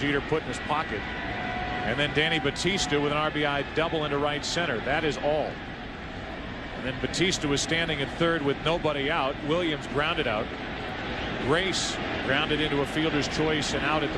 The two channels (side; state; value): both; identical; correlation 1.00